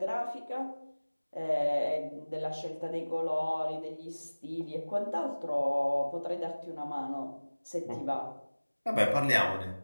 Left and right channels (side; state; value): both; inverted; correlation -1.00